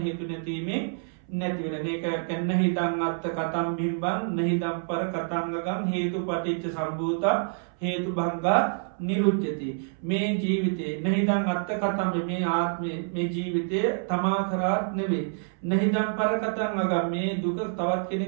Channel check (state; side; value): silent; left; 60 dB below the other